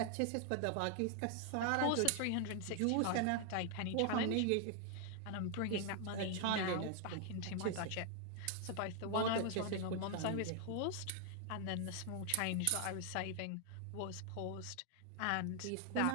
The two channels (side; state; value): both; different; correlation 0.00